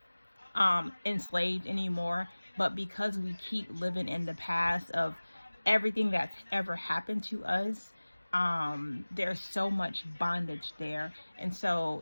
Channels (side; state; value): both; inverted; correlation -1.00